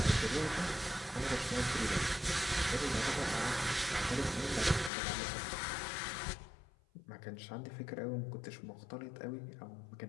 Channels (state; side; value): drops out; right; at 4.9 s